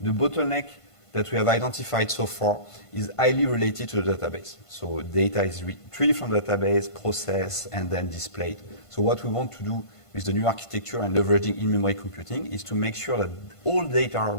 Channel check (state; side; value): late; right; 1.5 ms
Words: bottleneck that we have identified so far is highly related to the database. So data is retrieved from the database, processed, and then displayed. So what we want to do with the new architecture and leveraging in-memory computing is to make sure that all data